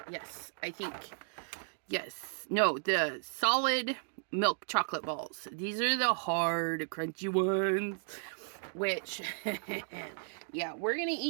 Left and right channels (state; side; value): silent; left; digital silence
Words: Yes, I think. Yes. No, the solid milk chocolate balls. These are the hard, crunchy ones. Which, yeah, we're going to